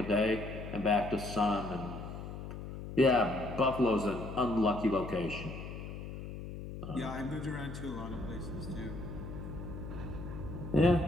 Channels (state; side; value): noise; left; hum, 9 dB below the sound